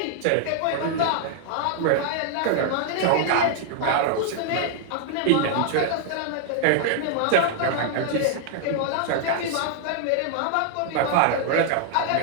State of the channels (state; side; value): different; both; correlation 0.00